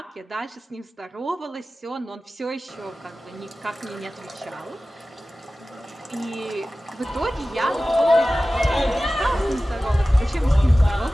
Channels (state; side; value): normal; both; correlation 0.96